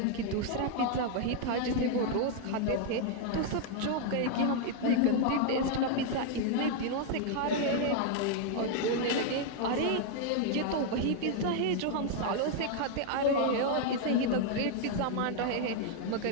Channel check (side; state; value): both; different; correlation 0.00